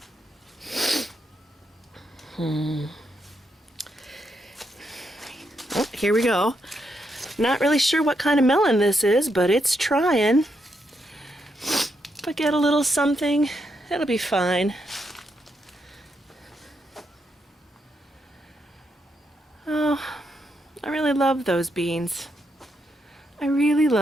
Oh, here we go. Not really sure what kind of melon this is, but it's trying. If I get a little something, it'll be fine. Oh, I really love those beans. I really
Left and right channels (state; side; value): normal; both; correlation 0.80